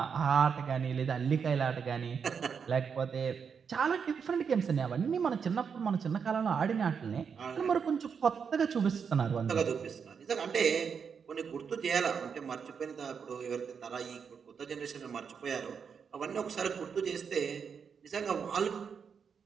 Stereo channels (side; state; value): left; quieter; 6.5 dB